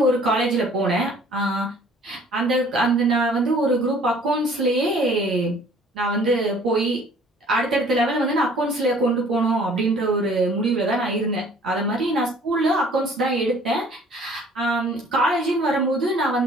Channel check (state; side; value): normal; both; correlation 0.54